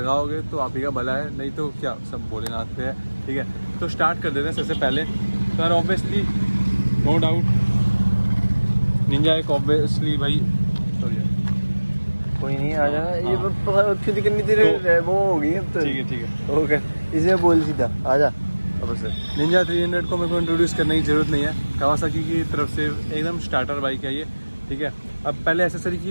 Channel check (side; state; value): both; inverted; correlation -1.00